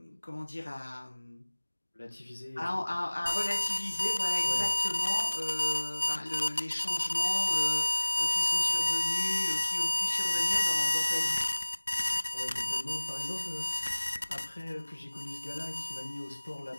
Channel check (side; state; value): both; inverted; correlation -1.00